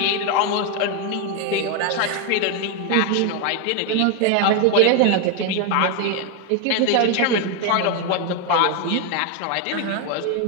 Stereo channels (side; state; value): both; different; correlation 0.01